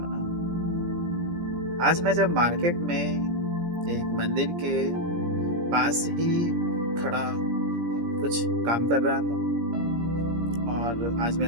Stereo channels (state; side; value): late; left; 17 ms